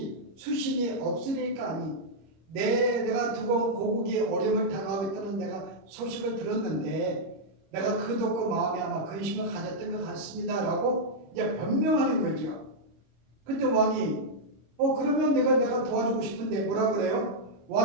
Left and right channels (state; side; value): late; left; 25 ms